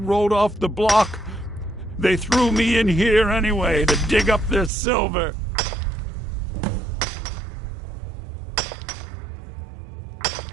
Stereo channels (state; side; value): drops out; left; at 4.7 s